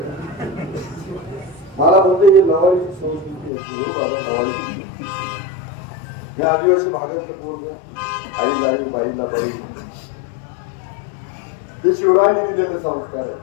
मला बोलते ही लवाळीची संस्कृती असते. हो बाबा लवाळीची मी आदिवासी भागातलं बोललो. आईला आई बाईला बाई ते शिवरायांनी दिलेले संस्कार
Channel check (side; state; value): right; drops out; at 3.5 s